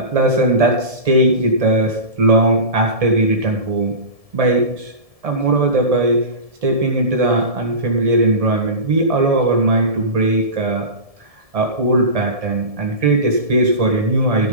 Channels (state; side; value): late; left; 1.7 ms